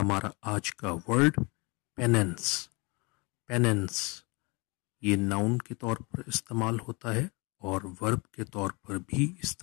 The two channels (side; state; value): right; quieter; 28.6 dB